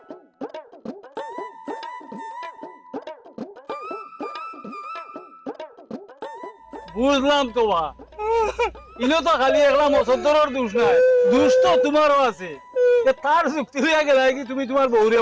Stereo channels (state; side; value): identical; both; correlation 1.00